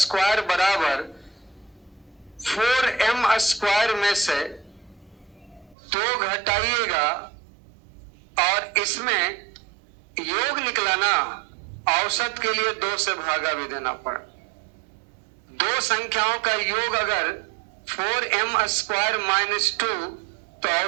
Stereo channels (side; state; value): left; drops out; at 5.8 s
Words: बराबर 4m स्क्वायर में से 2 घटाइएगा और इसमें योग निकला ना, औसत के लिए 2 से भागा भी देना पड़ा। दो संख्याओं का योग अगर 4m स्क्वायर माइनस 2 तो